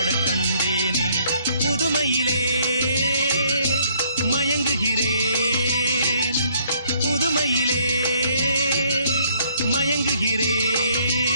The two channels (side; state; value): both; inverted; correlation -0.65